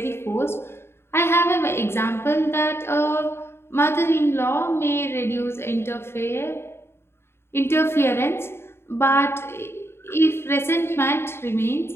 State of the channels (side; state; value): right; late; 0.12 ms